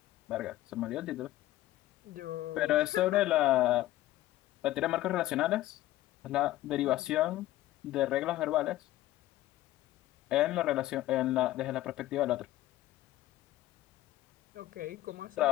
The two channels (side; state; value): right; quieter; 15.4 dB